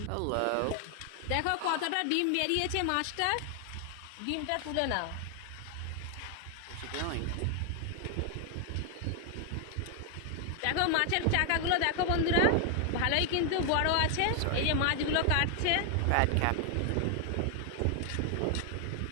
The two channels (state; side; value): different; both; correlation 0.00